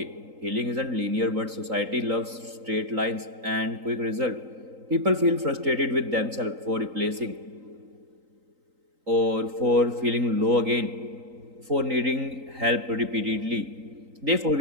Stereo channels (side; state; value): left; late; 3.9 ms